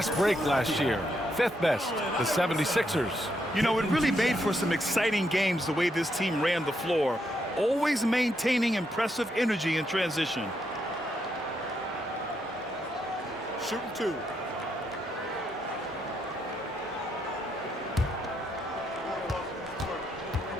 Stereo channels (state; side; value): normal; both; correlation 0.78